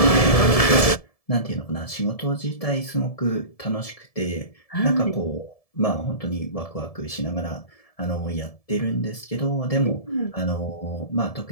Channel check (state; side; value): late; right; 1.7 ms